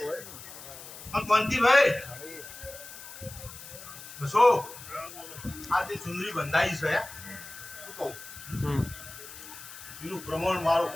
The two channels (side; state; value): left; noise; hiss, 14 dB below the sound